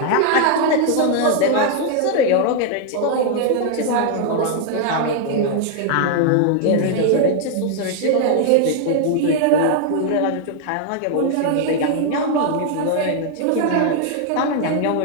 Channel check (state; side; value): different; both; correlation 0.00